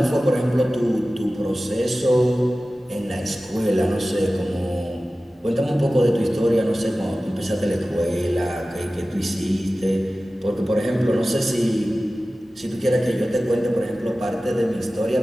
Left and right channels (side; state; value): both; normal; correlation 0.96